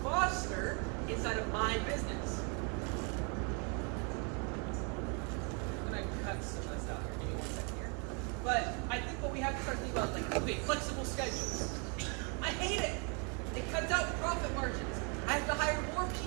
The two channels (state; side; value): quieter; left; 35.8 dB